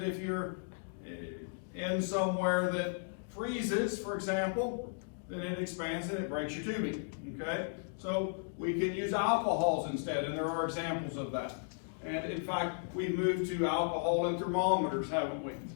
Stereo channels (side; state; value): right; silent; digital silence